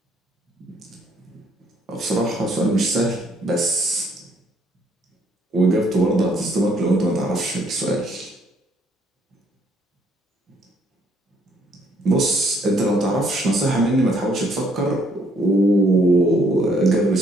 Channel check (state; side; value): normal; both; correlation 0.67